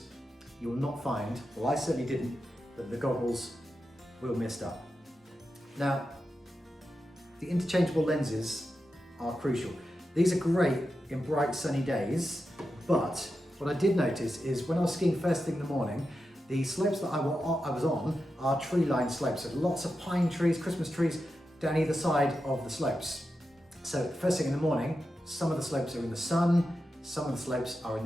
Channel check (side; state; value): both; normal; correlation 0.89